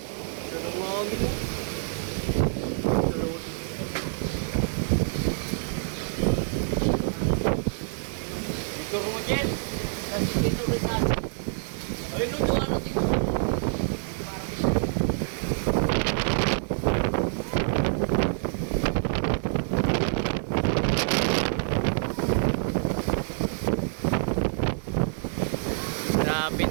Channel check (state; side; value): silent; left; 60 dB below the other